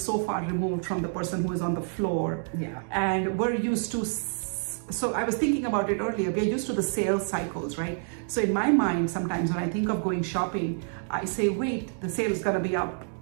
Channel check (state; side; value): silent; left; 59 dB below the other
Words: so far removed from the person who is on the floor. Yeah. And we're used to so I was thinking about it earlier. We're used to the sales cycles, right? So in my mind, sometimes when I think of going shopping, I say, wait, the sale is going to be up